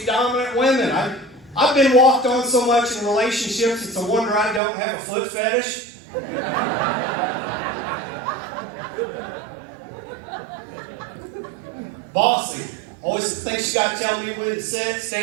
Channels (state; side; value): drops out; left; at 4.6 s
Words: dominant women. I've been walked on so much in relationships, it's a wonder I don't have a foot fetish. Bossy. Always thinks she's got to tell me when to sit,